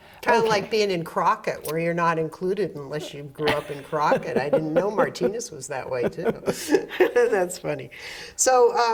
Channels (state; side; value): identical; both; correlation 1.00